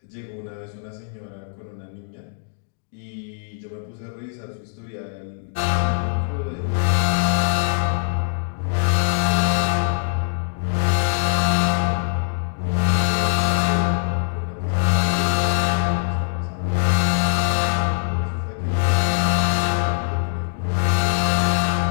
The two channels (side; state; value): right; silent; digital silence